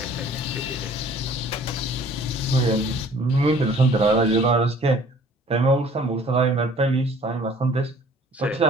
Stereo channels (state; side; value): normal; both; correlation 0.53